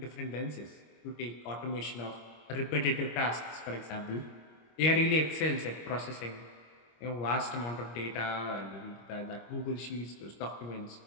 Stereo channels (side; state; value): right; late; 25 ms